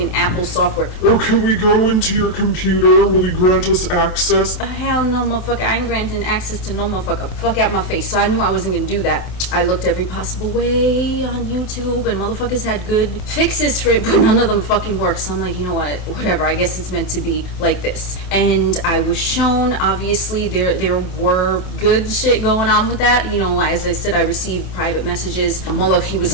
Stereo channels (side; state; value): right; late; 27 ms